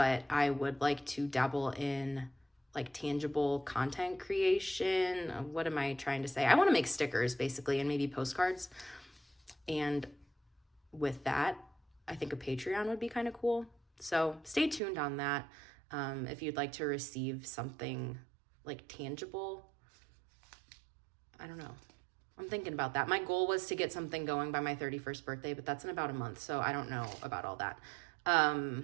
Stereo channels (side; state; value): left; drops out; at 14.8 s